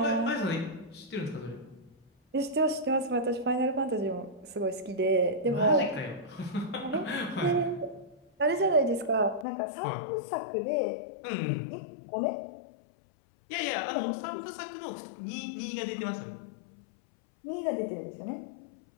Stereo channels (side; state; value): right; drops out; at 9.5 s